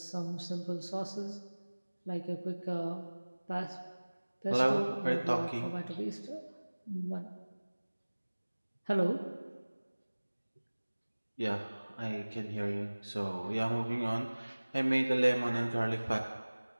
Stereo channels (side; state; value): both; inverted; correlation -1.00